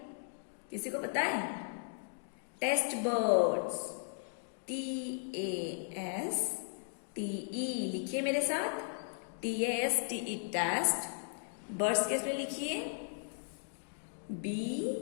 किसी को पता है? टेस्ट बर्ड्स, TASTE, लिखिए मेरे साथ, TASTE, टेस्ट। बर्ड्स के स्पेलिंग लिखिए,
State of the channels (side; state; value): right; silent; digital silence